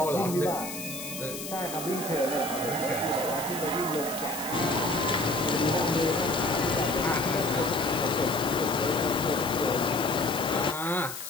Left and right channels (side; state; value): left; noise; hiss, 9 dB below the sound